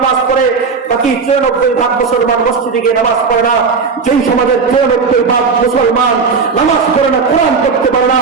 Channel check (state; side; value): quieter; left; 5.1 dB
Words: পড়ে, বাকি 94% মুসলমান মসজিদে গিয়ে নামাজ পড়ে না। যেই সমাজের 94% মুসলমান নামাজ পড়ে না, কোরআন পড়তে পারে না,